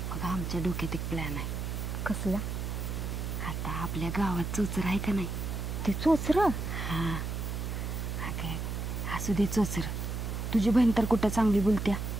आमच्या डोक्यात एक प्लॅन आहे. कसला? आता आपल्या गावात चोचर आहे का नाही? ते चोचर? हा अगं असू दे चोचर. तुझी बहीण तर कुठं चांगली बोलत्या.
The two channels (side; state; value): right; noise; hum, 3 dB below the sound